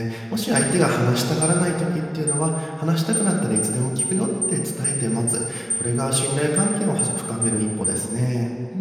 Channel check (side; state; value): both; identical; correlation 1.00